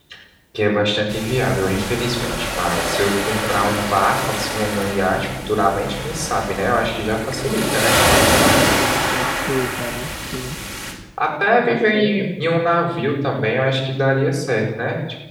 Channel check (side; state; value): both; identical; correlation 1.00